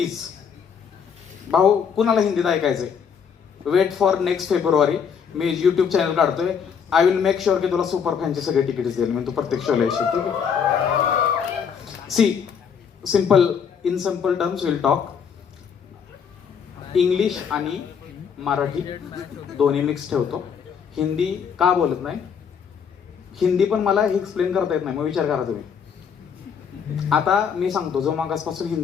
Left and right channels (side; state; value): right; quieter; 7.0 dB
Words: भाऊ कुणाला हिंदीत ऐकायचंय, वेट फॉर नेक्स्ट फेब्रुवारी. मी युट्यूब चॅनल काढतोय. आय विल मेक शुअर की तुला सुपर फॅनचे सगळे तिकीट्स देईल मी, तू प्रत्येक शोला येशील. ठीक आहे? See simple, in simple terms will talk. English आणि मराठी दोन्ही मिक्स ठेवतो. हिंदी का बोलत नाही, हिंदी पण मला हे एक्सप्लेन करता येत नाही, मग विचार करा तुम्ही. आता मी सांगतो, जो मागासपासून